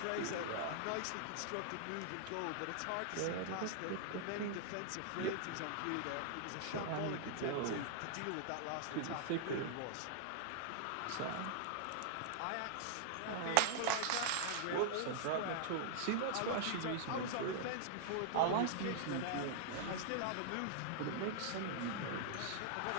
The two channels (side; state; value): both; different; correlation -0.01